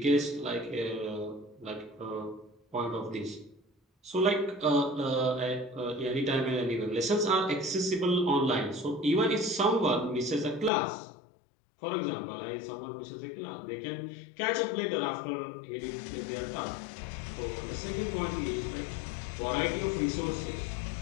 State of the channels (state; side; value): drops out; right; at 10.7 s